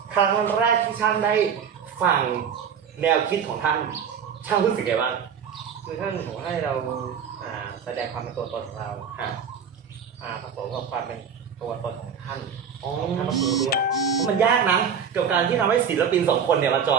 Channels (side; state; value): left; quieter; 7.1 dB